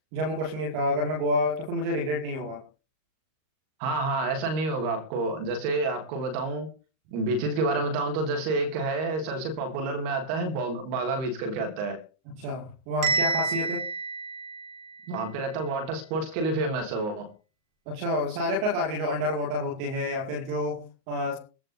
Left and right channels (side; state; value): left; late; 38 ms